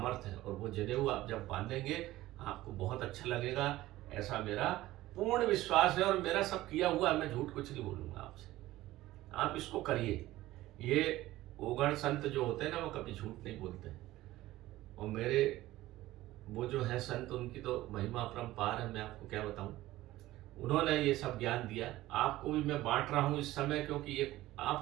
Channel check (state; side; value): quieter; left; 16.4 dB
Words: है। और वो जनेऊ आप जब बांधेंगे आपको बहुत अच्छा लगेगा, ऐसा मेरा पूर्ण विश्वास है। और मेरा सब किया हुआ है, मैं झूठ कुछ नहीं बोलूँगा आपसे। आप इसको करिए। ये ओघड़ संत जो होते हैं ना, वो कभी झूठ नहीं बोलते हैं। और मेरे वो जो है संत, उनकी तो महिमा अपरंपार है, मैं आपको क्या बताऊं। उन्होंने ये सब ज्ञान दिया, आपको भी मैं बांट रहा हूं इस समय, क्योंकि ये